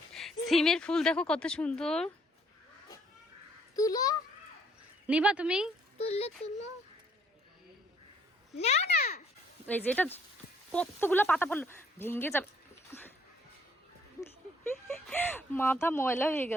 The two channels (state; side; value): normal; both; correlation 0.64